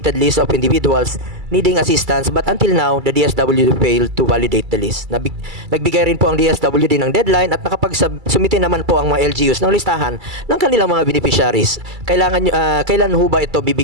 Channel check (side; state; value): left; late; 2.3 ms